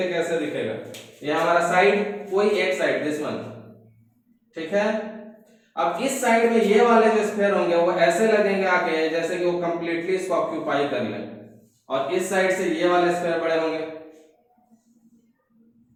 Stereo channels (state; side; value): identical; both; correlation 1.00